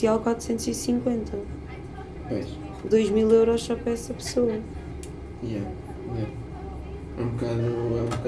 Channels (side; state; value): both; identical; correlation 1.00